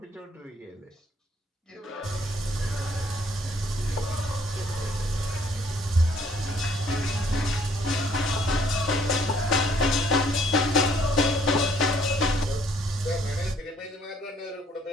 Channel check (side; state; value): both; normal; correlation 0.64